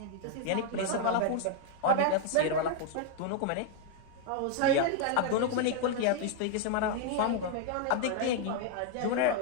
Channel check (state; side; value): different; both; correlation 0.00